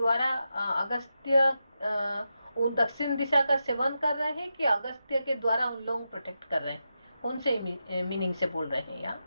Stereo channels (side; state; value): both; inverted; correlation -0.88